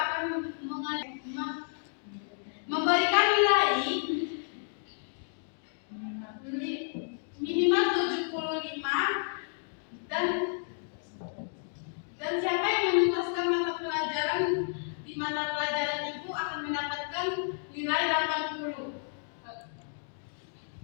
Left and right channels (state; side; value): silent; right; digital silence